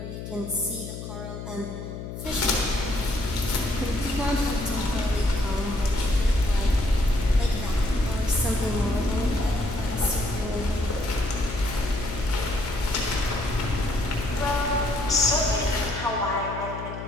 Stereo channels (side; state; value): left; noise; hum, 9 dB below the sound